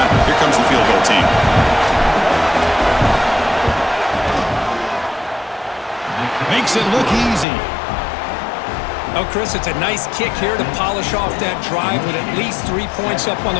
Here comes the field goal team. Makes it look easy. Oh, Chris, it's a nice kick here to polish off that drive with at least 3 points up on the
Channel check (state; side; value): drops out; right; at 7.5 s